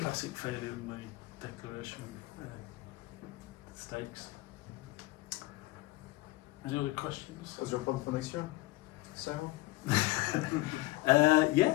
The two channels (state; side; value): quieter; right; 19.7 dB